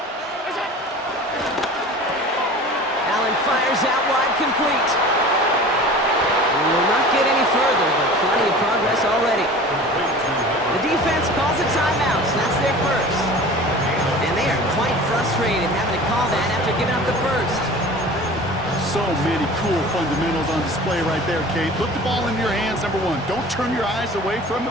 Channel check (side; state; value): both; normal; correlation 0.40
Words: Allen fires out wide, complete. We will not get any further, but plenty of progress already. The defense calls a timeout, so that's their first. And they are quite frustrated having to call that after giving up the first. So many cool fundamentals on display right there, Kate. Put the ball in your hands, number one. Don't turn your eyes away from